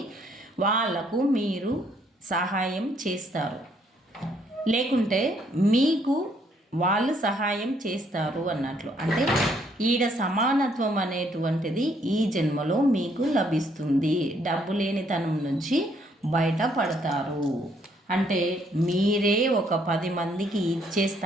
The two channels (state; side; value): normal; both; correlation 0.68